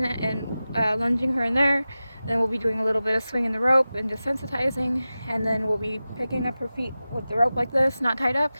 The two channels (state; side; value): inverted; both; correlation -0.95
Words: and lunging her in there. Then we'll be doing a little bit of swinging the rope and desensitizing, and then we'll be picking up her feet with the rope like this, not tied up,